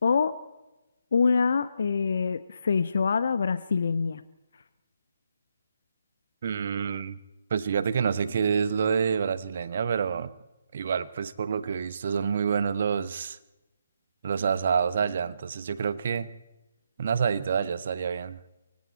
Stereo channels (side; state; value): both; inverted; correlation -0.79